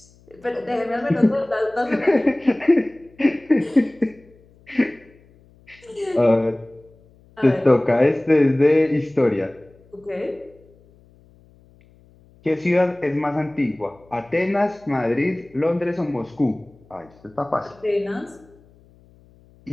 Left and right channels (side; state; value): left; noise; hum, 29 dB below the sound